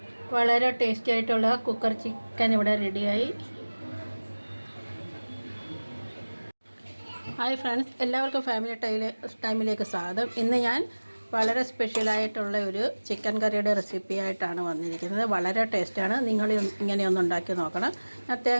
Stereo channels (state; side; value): inverted; both; correlation -1.00